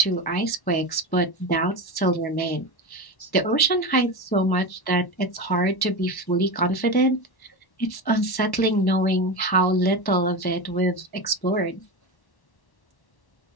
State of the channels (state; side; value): late; right; 1.1 ms